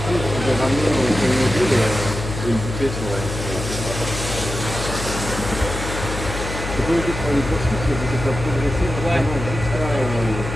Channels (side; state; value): left; noise; hum, 6 dB below the sound